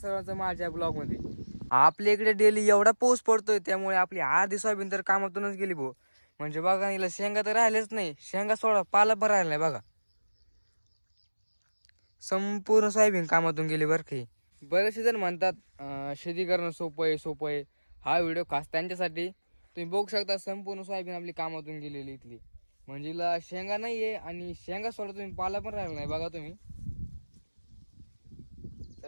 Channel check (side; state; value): both; inverted; correlation -1.00